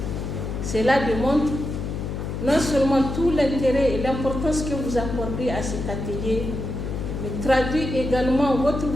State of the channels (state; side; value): noise; left; hum, 4 dB below the sound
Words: Cela démontre non seulement tout l'intérêt et l'importance que vous accordez à cet atelier, mais traduit également votre